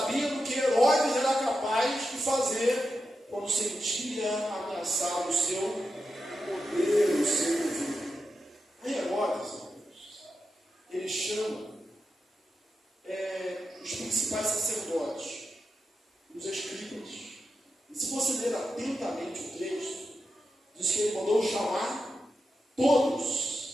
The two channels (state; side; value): normal; both; correlation 0.89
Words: que Herodes era capaz de fazer quando sentia ameaçado o seu poder, o seu governo. Aí Herodes, ele chama os principais sacerdotes, os escribas. E se você ler atentamente o texto, diz que ele mandou chamar